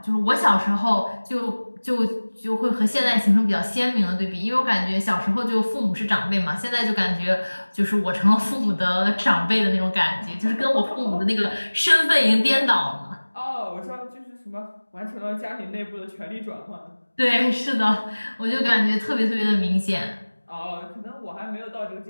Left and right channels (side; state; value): both; inverted; correlation -1.00